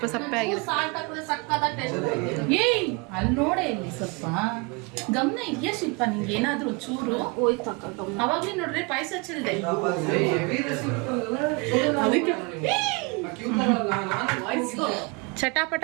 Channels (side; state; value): left; quieter; 29.5 dB